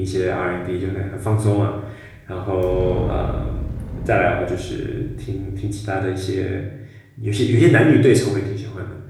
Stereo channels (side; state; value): both; identical; correlation 1.00